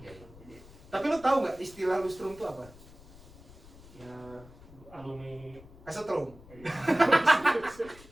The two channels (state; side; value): noise; left; rumble, 20 dB below the sound